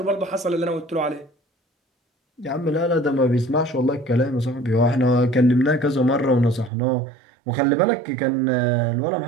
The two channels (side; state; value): left; drops out; at 6.7 s